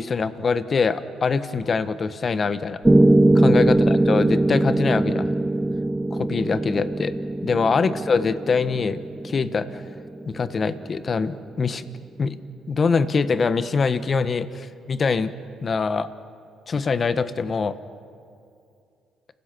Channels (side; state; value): both; normal; correlation 0.91